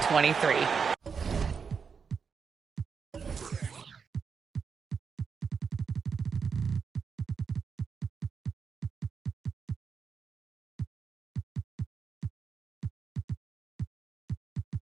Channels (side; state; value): left; quieter; 5.9 dB